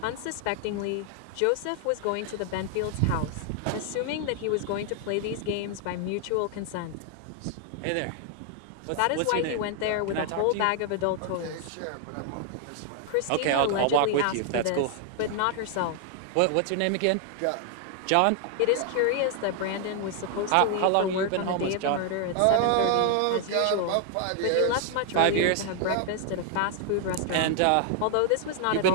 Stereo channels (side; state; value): both; different; correlation 0.00